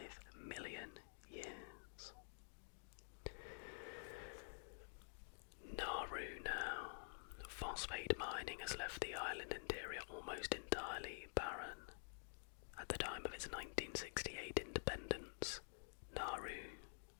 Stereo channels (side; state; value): right; silent; digital silence